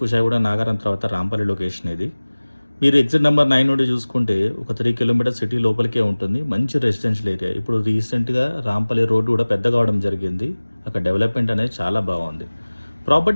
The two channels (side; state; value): both; inverted; correlation -1.00